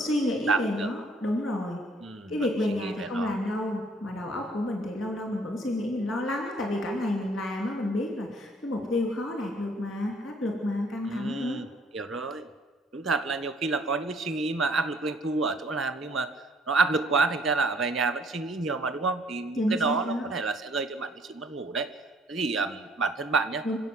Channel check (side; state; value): both; normal; correlation 0.61